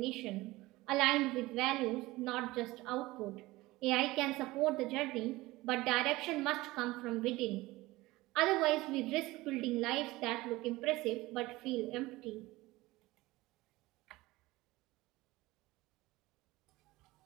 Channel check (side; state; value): left; quieter; 19.6 dB